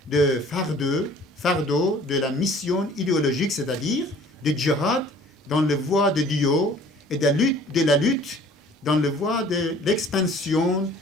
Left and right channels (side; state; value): both; normal; correlation 0.51